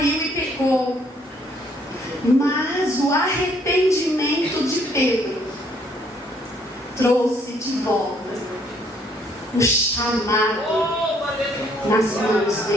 e pecou. Mas o arrependimento de Pedro trouxe de volta o chamado nas mãos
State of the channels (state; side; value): normal; both; correlation 0.66